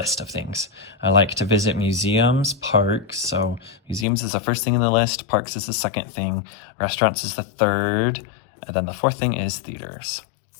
of things. I like to visit museums, parks. So museums is the first thing in the list. Parks is the second thing. Restaurants is the third. And then the fourth thing is theaters.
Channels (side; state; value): right; drops out; at 4.0 s